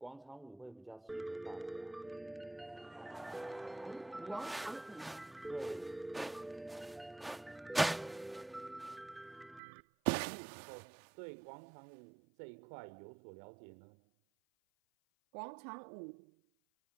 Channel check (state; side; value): drops out; left; at 9.6 s